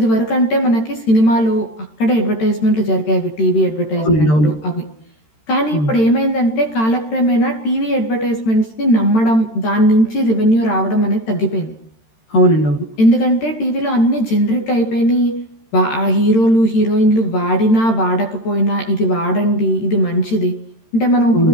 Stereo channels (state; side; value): late; right; 13 ms